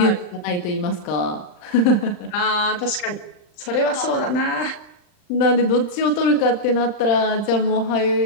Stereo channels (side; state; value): right; late; 39 ms